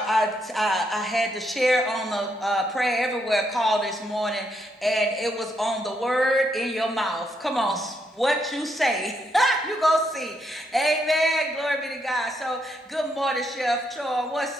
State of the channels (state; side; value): normal; both; correlation 0.77